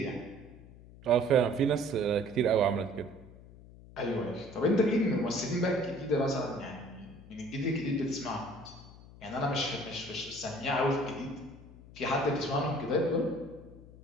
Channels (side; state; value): left; noise; hum, 19 dB below the sound